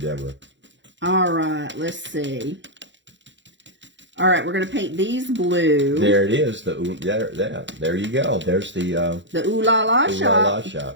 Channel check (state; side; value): late; left; 0.54 ms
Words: All right, let's see. All right, we're going to paint these blue. There it is. There you go. There's the Ooh La La shop.